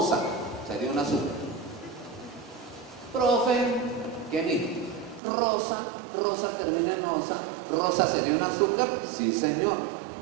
sería un azúcar. Profe, ¿qué dijo? Rosa termina en osa. ¿Rosa sería un azúcar? Sí, señor.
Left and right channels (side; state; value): left; drops out; at 5.2 s